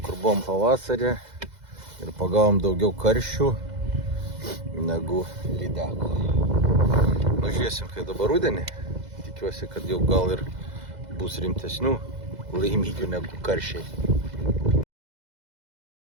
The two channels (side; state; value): left; late; 2.0 ms